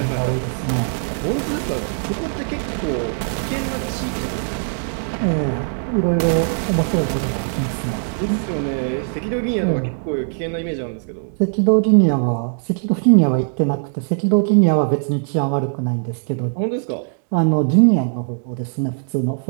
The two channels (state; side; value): silent; left; digital silence